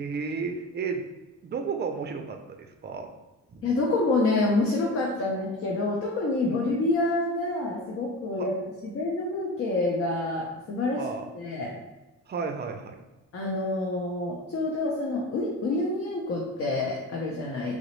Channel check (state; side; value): normal; both; correlation 0.30